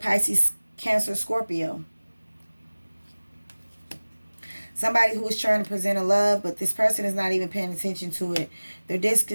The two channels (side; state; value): both; inverted; correlation -1.00